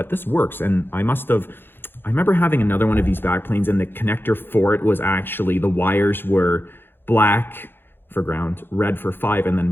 this works. And I remember having another one of these backplanes, and the connector for it was actually, the wires were black for ground, red for 5, and then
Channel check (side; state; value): right; late; 0.10 ms